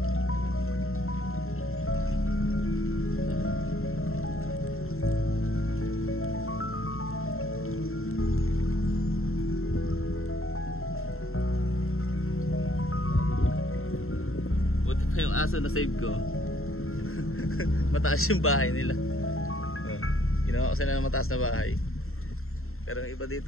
Yung aso na save ko. Mataas yung bahay nila. Ginawa ko sila ng mataas na bahay. Pero yung iba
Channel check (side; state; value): right; late; 0.62 ms